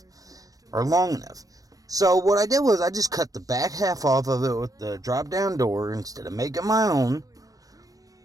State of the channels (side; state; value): left; late; 0.17 ms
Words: or long enough. So what I did was I just cut the back half off of it with the drop down door instead of making my own,